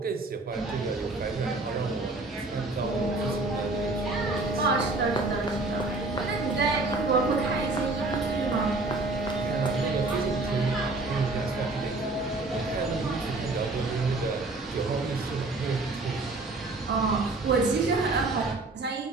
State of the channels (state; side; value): quieter; left; 3.2 dB